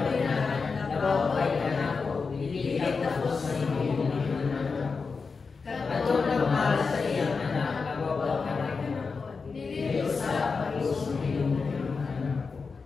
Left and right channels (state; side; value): quieter; right; 4.8 dB